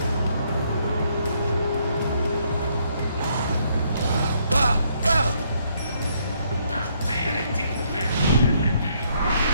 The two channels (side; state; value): both; inverted; correlation -0.70